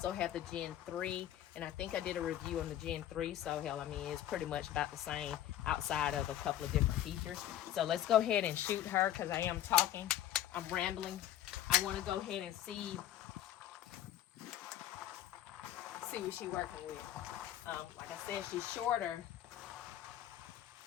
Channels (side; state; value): right; quieter; 12.1 dB